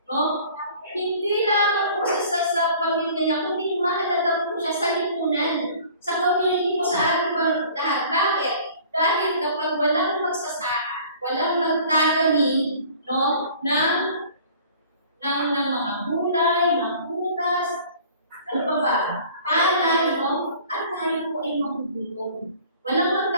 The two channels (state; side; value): inverted; both; correlation -0.49